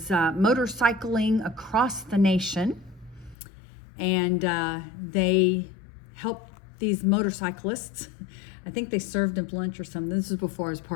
motorcycling across the nation, and they helped these motorcyclists. I think they served them lunch or something. This was before I was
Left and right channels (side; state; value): right; drops out; at 3.4 s